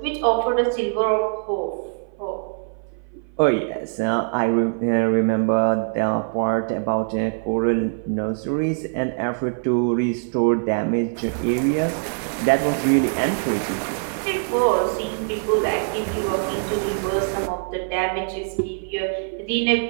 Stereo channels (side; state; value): left; silent; 57 dB below the other